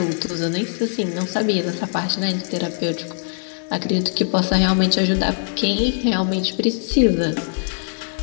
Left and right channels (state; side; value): silent; right; digital silence